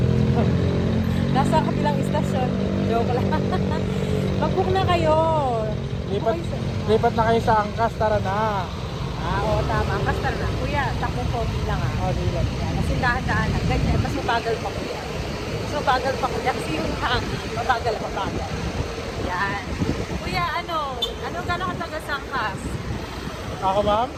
Nasa kabilang istasyon. Joke lang. Mag-book na kayo. Lipat na kayo sa Angkas, tara na. Oo, tama. Basta na. Kuya, takbong pogi lang ah. Oh, di lang. Yan. Kasi dahan-dahan lang. Ganyan. Mas mabagal pa kuya. Mas mabagal pa kuya. Kasi yung hangin. Mabagal. Yan. Kuya, gano'ng katagal sa angkas? Ako, ma'am?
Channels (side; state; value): both; identical; correlation 1.00